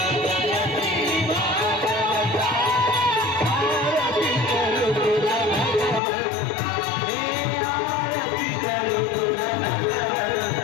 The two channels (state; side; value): drops out; right; at 6.0 s